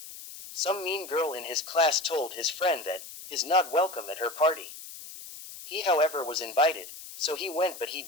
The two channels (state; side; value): noise; left; hiss, 13 dB below the sound